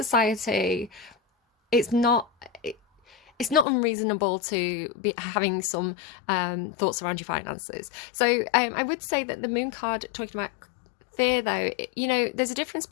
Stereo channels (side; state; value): right; drops out; at 3.7 s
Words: It's not unreasonable to be having some thoughts around your finances. So I would say that the moon card talking about fear, though, there's a difference